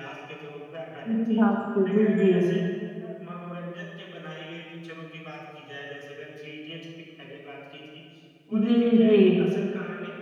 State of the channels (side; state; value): both; identical; correlation 1.00